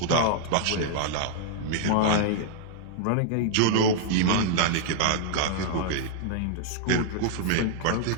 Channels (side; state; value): both; different; correlation -0.01